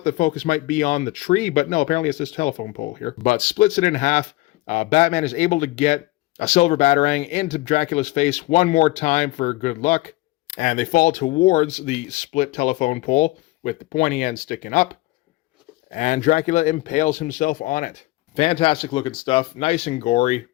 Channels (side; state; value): right; quieter; 20.1 dB